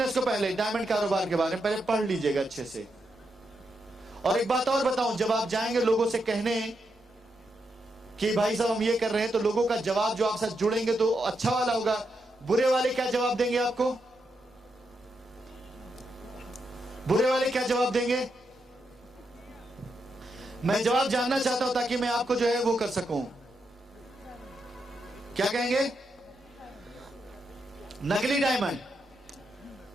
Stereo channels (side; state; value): both; normal; correlation 0.83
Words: को, पहले डायमंड कारोबार के बारे में पहले पढ़ लीजिएगा अच्छे से। और एक बात और बताऊं, जब आप जाएंगे लोगों से कहने कि भाई साहब हम ये कर रहे हैं, तो लोगों का जवाब जो आपसे जुड़ेंगे तो अच्छा वाला होगा, बुरे वाले क्या जवाब देंगे आपको? बुरे वाले क्या जवाब देंगे? मैं जवाब जानना चाहता हूं ताकि मैं आपको जो है वो कर सकूं। क्या कहेंगे? नकली डायमंड,